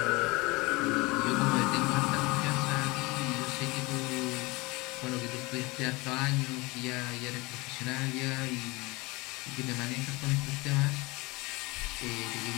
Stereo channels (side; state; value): right; quieter; 23.9 dB